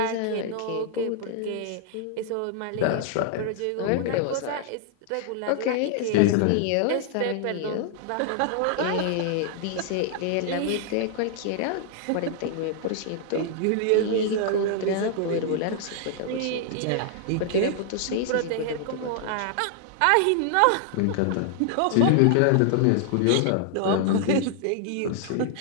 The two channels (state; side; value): different; both; correlation 0.00